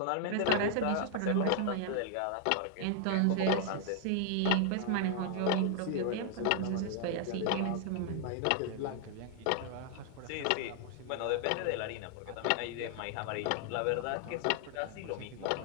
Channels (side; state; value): both; different; correlation 0.00